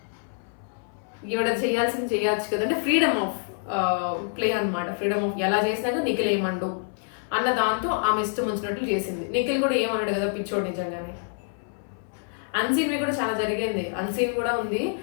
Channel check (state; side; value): silent; right; 61 dB below the other